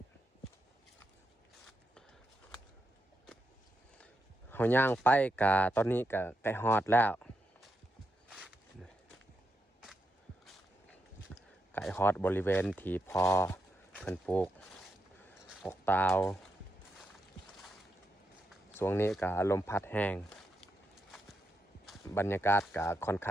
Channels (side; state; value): both; normal; correlation 0.84